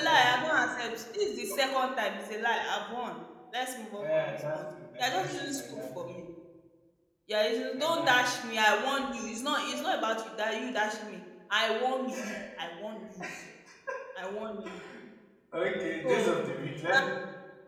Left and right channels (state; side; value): identical; both; correlation 1.00